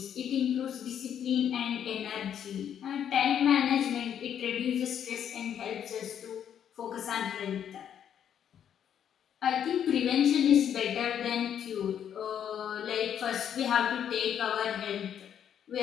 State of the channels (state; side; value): quieter; right; 9.1 dB